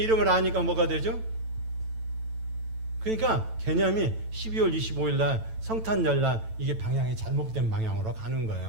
아니까 뭐가 되죠? 그러니까 개념이 12월 25일 날 성탄절 날 이게 방향이 잘못된 방향으로 가는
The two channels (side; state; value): left; late; 9.0 ms